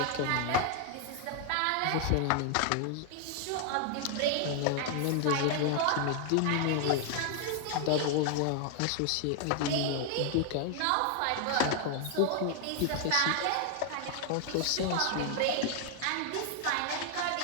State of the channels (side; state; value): both; different; correlation 0.00